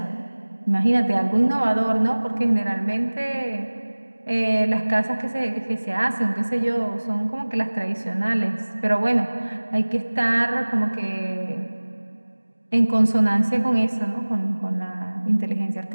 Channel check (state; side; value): inverted; both; correlation -1.00